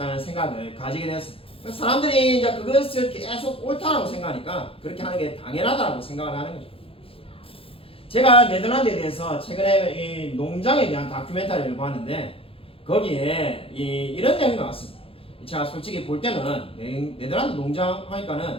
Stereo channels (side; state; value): right; late; 0.27 ms